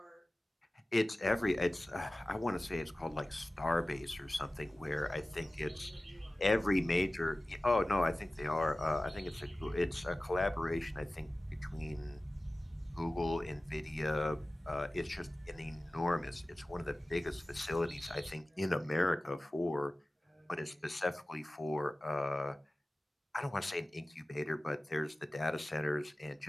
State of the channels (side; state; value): both; normal; correlation 0.97